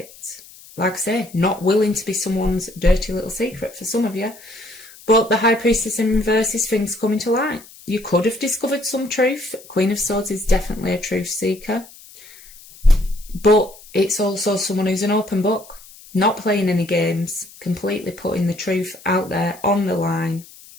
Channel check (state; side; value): noise; left; hiss, 21 dB below the sound